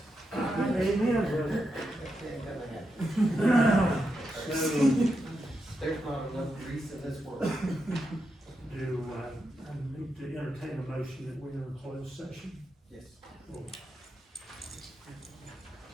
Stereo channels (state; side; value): normal; both; correlation 0.85